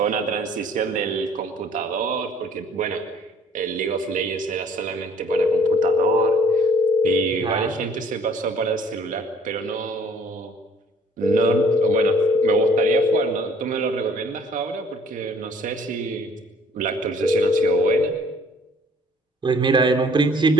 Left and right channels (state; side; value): normal; both; correlation 0.57